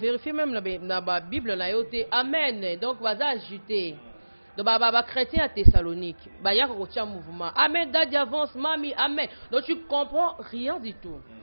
même na ba Bible na yote amen. Donc baza ajouter. Donc ba chrétien à Thessalonique, ba ya ko tia mouvement. Amen dadi avance mami amen. Donc tu comprends rien du tout.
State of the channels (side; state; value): both; inverted; correlation -1.00